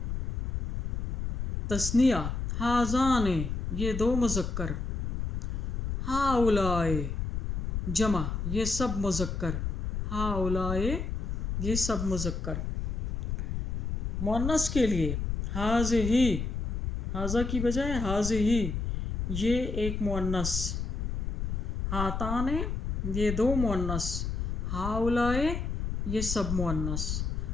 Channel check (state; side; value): noise; left; rumble, 2 dB below the sound